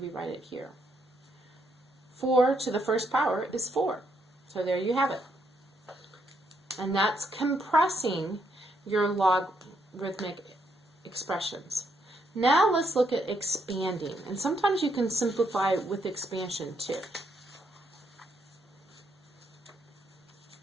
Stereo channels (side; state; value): both; normal; correlation 0.75